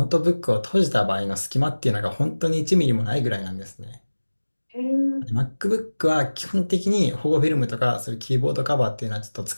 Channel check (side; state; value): both; inverted; correlation -1.00